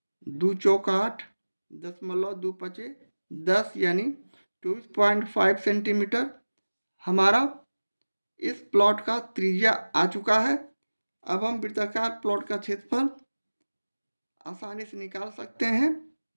2 चौक 8, 0.2 10, यानी 24.5 सेंटीमीटर हमारा इस प्लॉट का त्रिज्या आ चुका है। अब हम वृत्ताकार प्लॉट का क्षेत्रफल आसानी से निकाल सकते हैं,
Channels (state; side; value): inverted; both; correlation -1.00